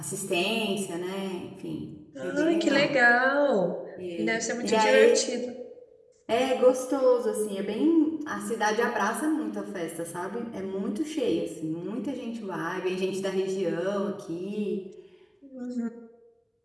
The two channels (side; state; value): both; identical; correlation 1.00